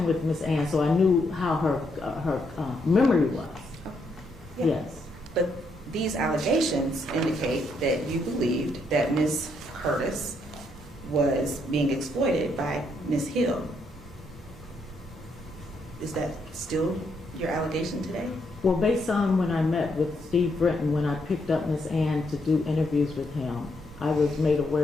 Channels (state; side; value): normal; both; correlation 0.76